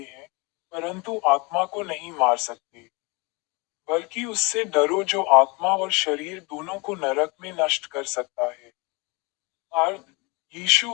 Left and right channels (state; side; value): quieter; right; 28.0 dB